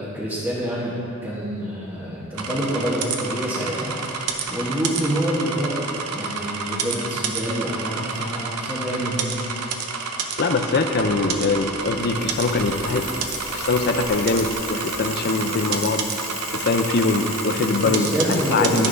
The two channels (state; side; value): normal; both; correlation 0.28